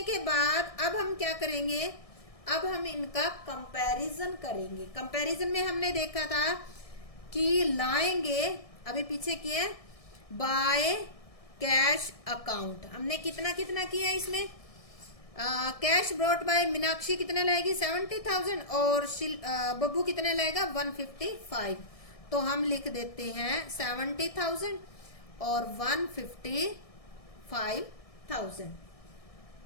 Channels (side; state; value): right; late; 1.6 ms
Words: के बाद अब हम क्या करेंगे, अब हम इनका कंपैरिजन करेंगे। कंपैरिजन में हमने देखा था कि लाएंगे, अभी पीछे किए, बाय कैश अकाउंट। हमने कितना कितना किया इसमें, कैश ब्रॉट बाय मीनाक्षी कितने लाएगी 70,000 और बब्बू कितने लाएगा 155। तो हम लिख देते हैं 70,000 और 155,000।